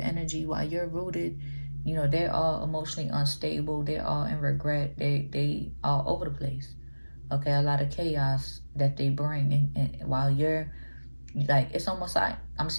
while you're rooted, you know, they're all emotionally unstable. They're all in regret. They all over the place. Okay, a lot of chaos that they bring. And while you're, like, it's almost like I'm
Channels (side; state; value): both; inverted; correlation -1.00